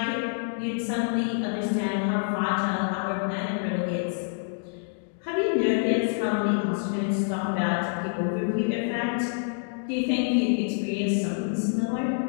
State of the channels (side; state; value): right; silent; digital silence